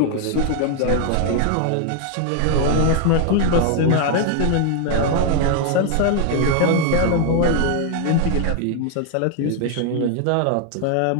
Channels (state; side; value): different; both; correlation 0.00